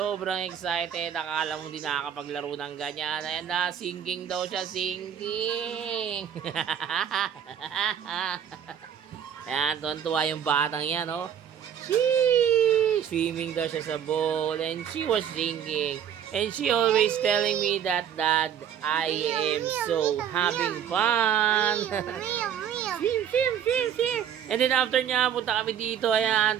excited. Akala mo di nakakapaglaro ng ganyan. Ayan na, singing daw siya, singing. Ayan, tuwan-tuwa yung batang yan, oh. Swimming daw siya sa bowl and she was singing. And she always telling me that, Dad, I am so having fun. Swim. And then after niya, punta kami dito, ayan,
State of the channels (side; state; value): left; quieter; 9.1 dB